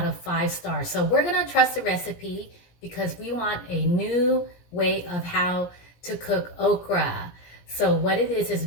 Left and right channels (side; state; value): right; late; 17 ms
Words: of 5 stars. So we're gonna trust the recipe because we want a new way of how to cook okra. So what it is